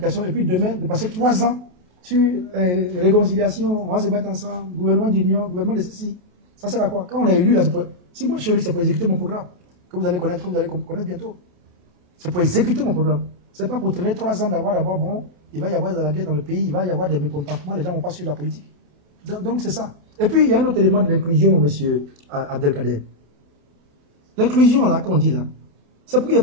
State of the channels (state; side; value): late; left; 28 ms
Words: et puis demain, de passer 3 ans sur réconciliation, on va se mettre ensemble, gouvernement d'union, gouvernement de ceci. Ça sert à quoi? Quand on a élu, là, si moi je suis élu, c'est pour exécuter mon programme, que vous allez connaître bientôt. C'est pour exécuter mon programme. Ce n'est pas pour traîner 3 ans d'avoir d'abord, bon, il va y avoir de la guerre dans le pays, il va y avoir des mécontentements, les gens ne vont pas suivre la politique. Donc c'est ça. Et puis il y a un autre élément de l'inclusion, monsieur Abdelkader. L'inclusion, là, qu'on dit là, c'est pour qu'il n'y